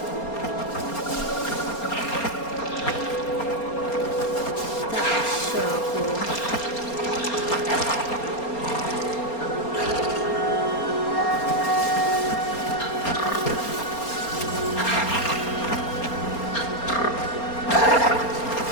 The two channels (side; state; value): right; late; 4.3 ms